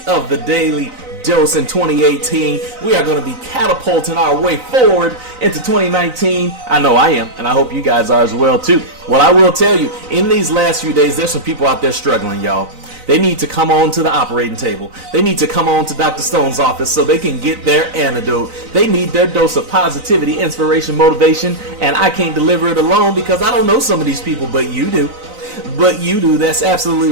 of the Daily Dose in 2018. We are going to be catapulting our way forward into 2019. I know I am, and I hope you guys are as well too. Well, I will tell you, in these last few days, there's some people out there struggling, y'all. They need to come on to the operating table. They need to come on to Dr. Stone's office so they can get their antidote. They need their dose of positivity, inspiration, motivation, and I can't deliver it alone because I don't know some of these people, but you do. That's absolutely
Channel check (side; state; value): left; late; 3.9 ms